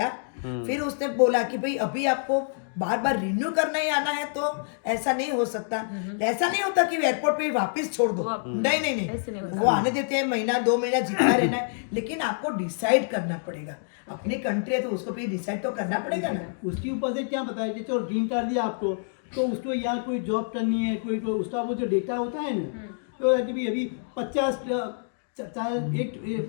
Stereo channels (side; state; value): right; silent; digital silence